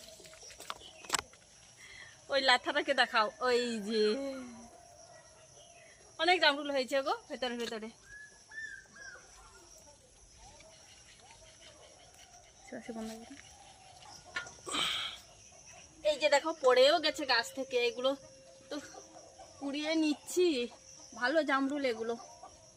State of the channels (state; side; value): identical; both; correlation 1.00